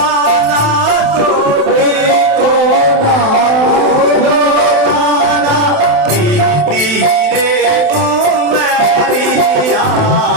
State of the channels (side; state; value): left; late; 27 ms